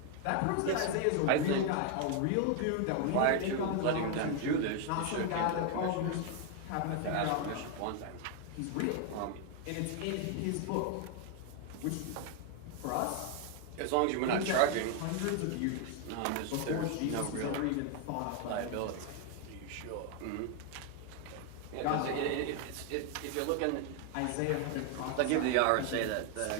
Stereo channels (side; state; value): both; different; correlation 0.01